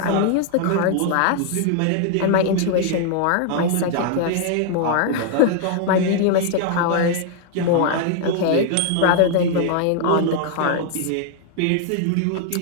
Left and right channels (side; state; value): both; different; correlation 0.00